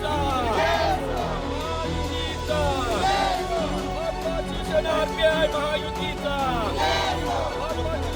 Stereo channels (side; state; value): both; identical; correlation 1.00